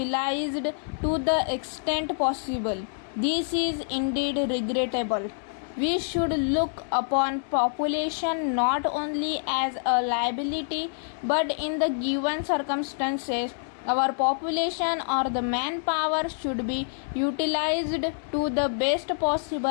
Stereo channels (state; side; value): silent; right; digital silence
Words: to the extent possible. This is indeed regrettable. We should look upon population not only as a liability but in the given circumstances our population or the manpower should be utilized to the best